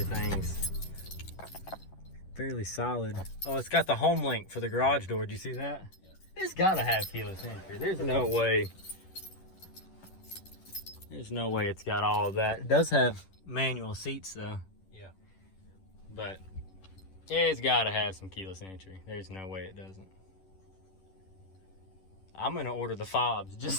fairly solid. Oh, it's got the home link for the garage door. Did you see that? Yeah. It's gotta have keyless entry. There's no way. There's no way it's got all of that. It does have manual seats though. Yeah. But it's gotta have some keyless entry. There's no way it doesn't. I'm gonna order the fobs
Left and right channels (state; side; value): late; right; 11 ms